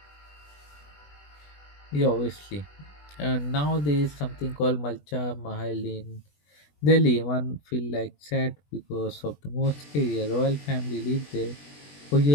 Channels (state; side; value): late; right; 20 ms